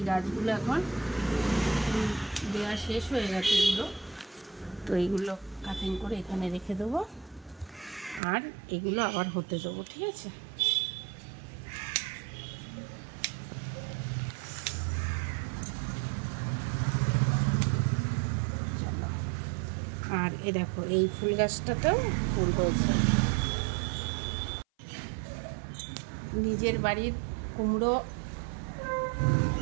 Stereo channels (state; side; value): drops out; left; at 8.2 s